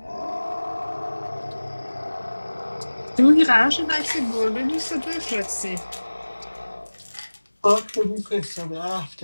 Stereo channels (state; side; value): inverted; both; correlation -1.00